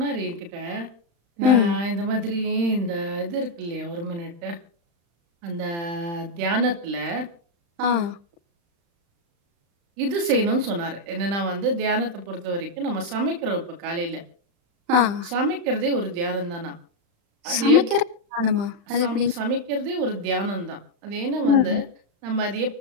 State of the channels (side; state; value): left; late; 35 ms